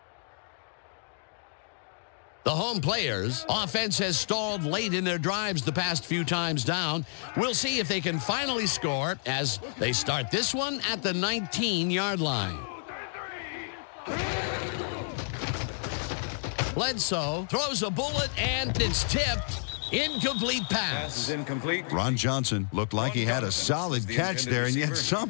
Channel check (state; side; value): silent; right; digital silence